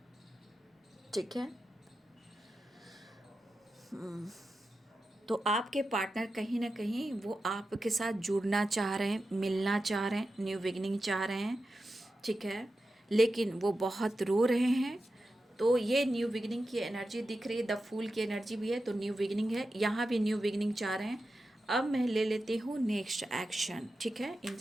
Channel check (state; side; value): normal; both; correlation 0.91